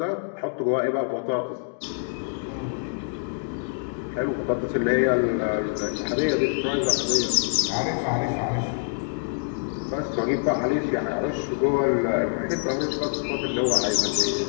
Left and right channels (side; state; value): right; silent; 61 dB below the other